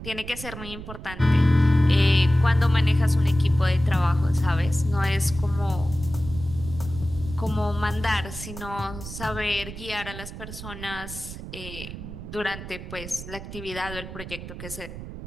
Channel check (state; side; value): noise; right; rumble, 11 dB below the sound